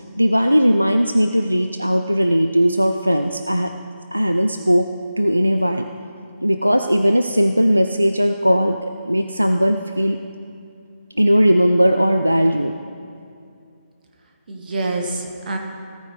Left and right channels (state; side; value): inverted; both; correlation -0.96